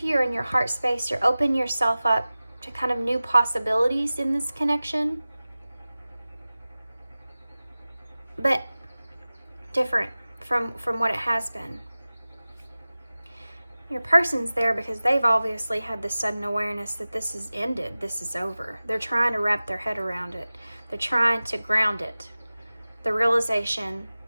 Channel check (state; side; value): inverted; both; correlation -0.97